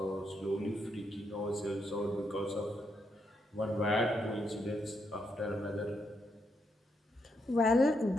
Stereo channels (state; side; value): normal; both; correlation 0.79